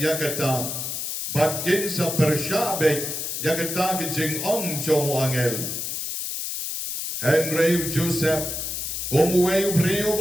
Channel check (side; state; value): left; noise; hiss, 4 dB below the sound